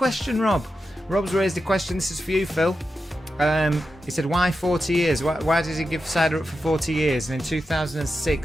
Rob. Rob's raised a question. This is for you, Phil. He said, why 40 years? Why did he give cider up for 40 years? And in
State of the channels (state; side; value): normal; both; correlation 0.89